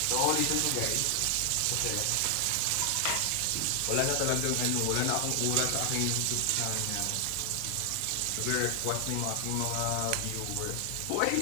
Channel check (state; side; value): different; both; correlation 0.00